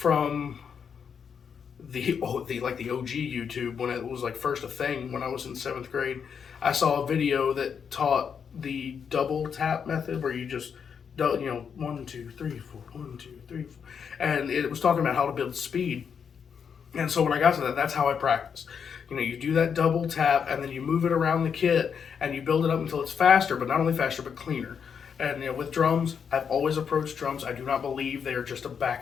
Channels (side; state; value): right; quieter; 6.9 dB